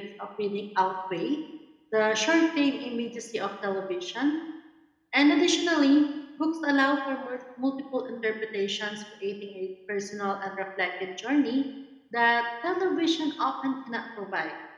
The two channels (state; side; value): identical; both; correlation 1.00